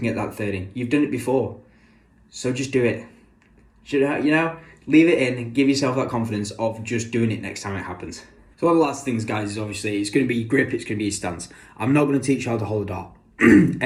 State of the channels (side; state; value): both; identical; correlation 1.00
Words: get that third in. You've done it before, so just do it. Leave it in and give yourself that confidence of just doing it next time it happens. So one of the last things, guys, is obviously it's going to be your grip, it's going to be your stance. I'm not going to teach you how to hold a dart.